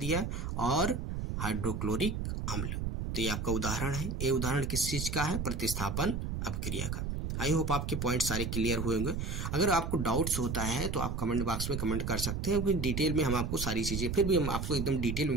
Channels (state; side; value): noise; right; rumble, 3 dB below the sound